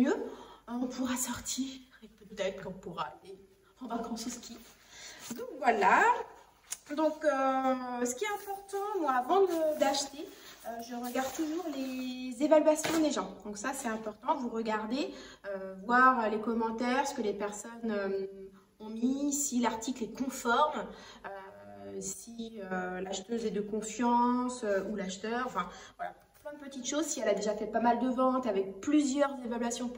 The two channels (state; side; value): identical; both; correlation 1.00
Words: on pourra sortir et peut-être qu'on pourra aller en vacances au ski. Donc voilà. Donc ce qui est important, moi avant d'acheter, je regarde toujours les évaluations des gens. Donc ça c'est important, vous regardez, voir les commentaires, ce que les personnes ont mis, si l'article est conforme, si l'acheteuse est de confiance ou l'acheteur, enfin voilà, plein de petites choses. Si elle a déjà fait pas mal de ventes avec plusieurs évaluations